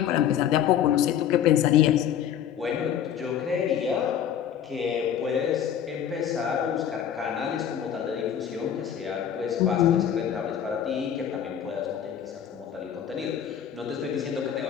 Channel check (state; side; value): quieter; right; 9.3 dB